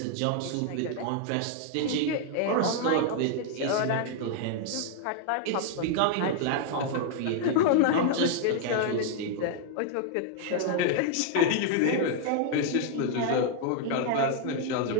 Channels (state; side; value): different; both; correlation 0.00